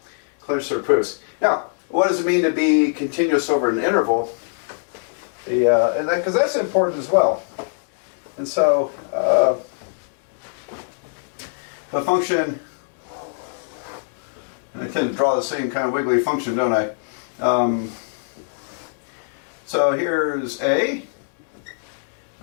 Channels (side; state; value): right; silent; digital silence